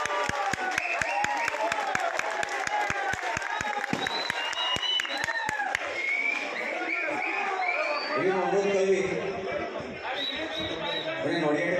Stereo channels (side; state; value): both; identical; correlation 1.00